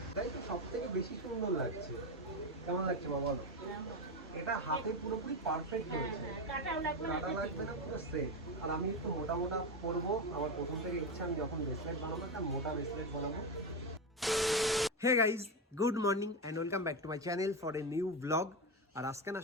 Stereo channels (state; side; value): normal; both; correlation 0.14